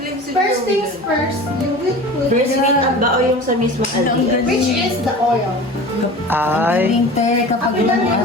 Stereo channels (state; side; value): normal; both; correlation 0.37